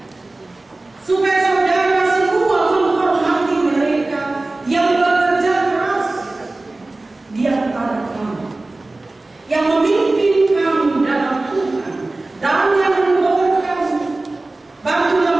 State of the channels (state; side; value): quieter; left; 3.0 dB